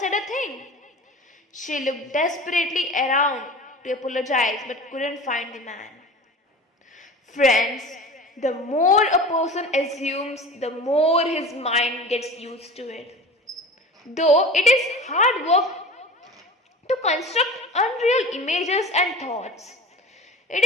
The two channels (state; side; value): normal; both; correlation 0.36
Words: a thing. She looked desperately around to apologize but couldn't find the man. Friends, the more a person assumes, the more his mind gets used to it. Though it is hard work to construct unreal images and thoughts. It